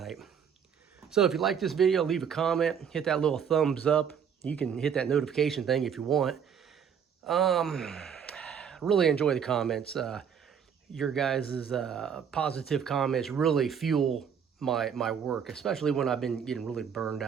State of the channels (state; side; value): quieter; left; 7.5 dB